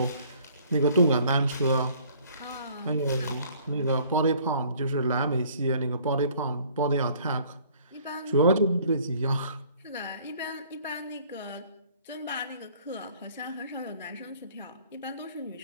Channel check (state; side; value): inverted; both; correlation -0.56